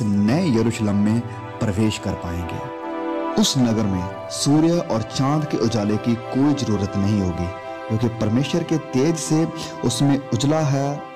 नए यरूशलेम में प्रवेश कर पाएंगे। उस नगर में सूर्य और चांद के उजाले की कोई जरूरत नहीं होगी, क्योंकि परमेश्वर के तेज से उसमें उजला है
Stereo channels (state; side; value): identical; both; correlation 1.00